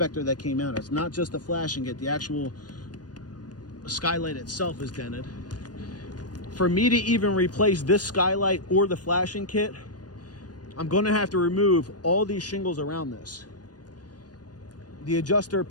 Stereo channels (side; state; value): right; late; 0.69 ms